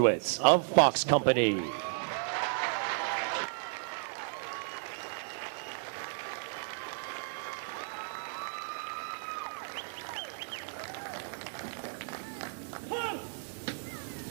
of Fox Company.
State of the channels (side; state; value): left; silent; digital silence